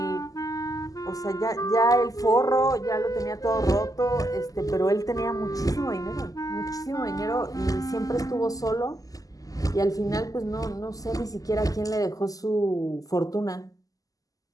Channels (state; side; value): late; right; 0.17 ms